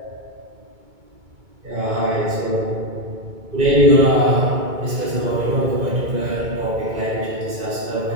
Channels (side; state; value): left; late; 2.3 ms